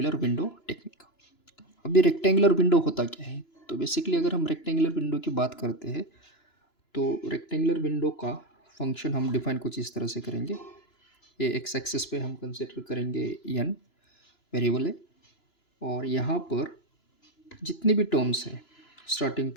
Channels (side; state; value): right; late; 2.9 ms